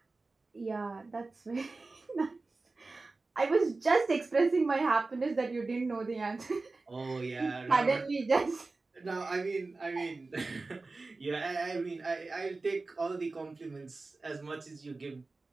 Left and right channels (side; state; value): left; quieter; 3.6 dB